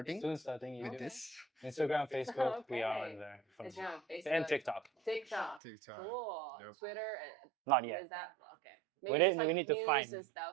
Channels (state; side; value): drops out; left; at 5.6 s